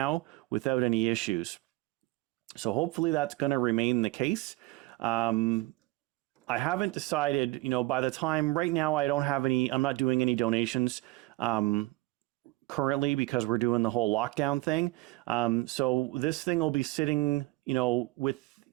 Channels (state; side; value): quieter; left; 21.0 dB